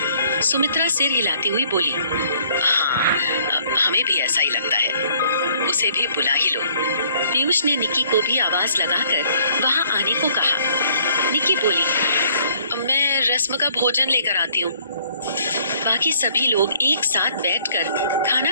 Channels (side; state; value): both; inverted; correlation -0.60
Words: सुमित्रा सिर हिलाती हुई बोली। हाँ, हमें भी ऐसा ही लगता है। उसे भी बुला ही लो। पीयूष ने निकी को भी आवाज लगाकर वहां आने को कहा। निकी बोली, मैं रस्म का भोजन लेकर आती हूँ। बाकी सभी लोग एक साथ बैठकर खाना